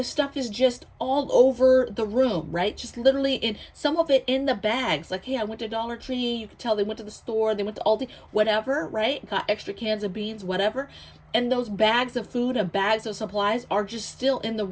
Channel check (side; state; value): both; identical; correlation 1.00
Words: stuff is just all over the room, right? Just literally in some of it in the bags. Like, hey, I went to Dollar Tree. You could tell they went to the store, they went to Aldi, whatever, right? Got extra cans of beans, whatever. And those bags of food and bags of supplies are just still in the